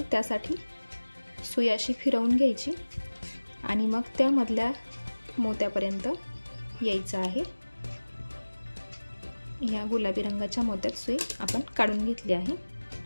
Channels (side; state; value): both; inverted; correlation -1.00